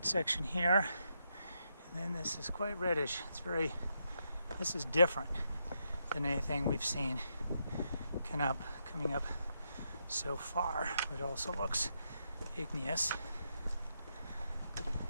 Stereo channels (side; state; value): both; inverted; correlation -0.81